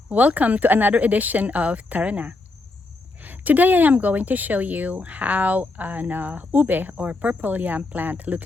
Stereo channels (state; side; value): quieter; right; 3.2 dB